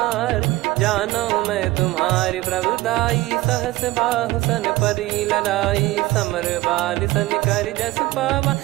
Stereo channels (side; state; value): left; quieter; 18.8 dB